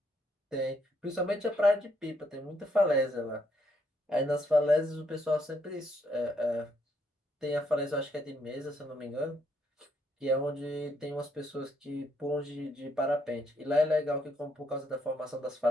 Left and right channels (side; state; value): both; normal; correlation 0.73